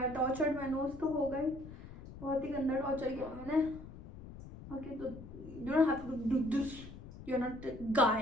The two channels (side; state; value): left; noise; rumble, 14 dB below the sound